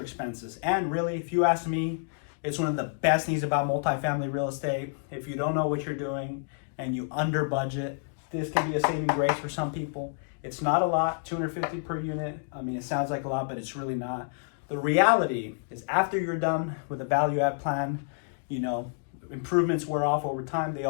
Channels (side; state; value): right; silent; digital silence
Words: expenses. And really, if you ask me, it's one of the best things about multifamily real estate. If you don't know what you're doing and you under budget, this can be a saving grace for some people. It's not a lot, $250 per unit. I mean, it sounds like a lot, but it's really not. The reality is after you're done with a value add plan, you know, improvements wear off over time. They